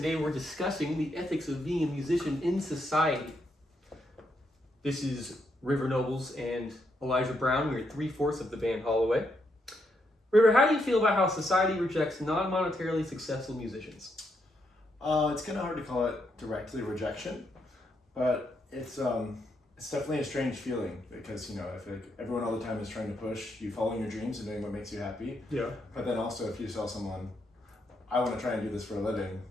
we're discussing the ethics of being a musician in society. This is River Nobles and Elijah Brown. We're 3/4 of the band Holloway. River, how do you feel about how society rejects non-monetarily successful musicians? It's kind of hard to call it directly rejection, but it's definitely a strange feeling because, you know, I feel like everyone all the time is trying to push you following your dreams and doing what makes you happy. Yeah. But then also if you tell someone, I want to try and do this for a living,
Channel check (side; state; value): both; normal; correlation 0.78